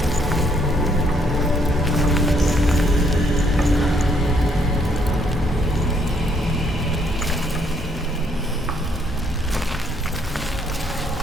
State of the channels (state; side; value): normal; both; correlation 0.69